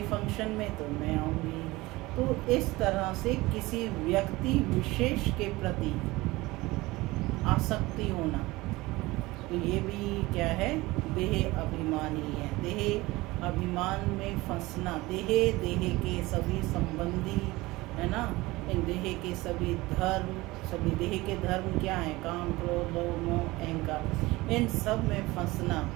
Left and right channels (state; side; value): quieter; left; 20.5 dB